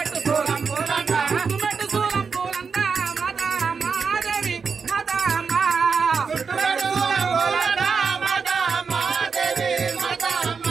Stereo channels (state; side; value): quieter; left; 5.5 dB